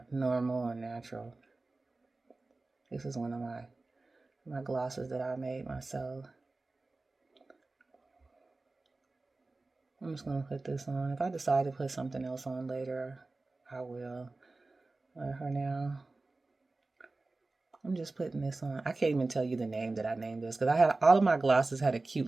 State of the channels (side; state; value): left; quieter; 3.3 dB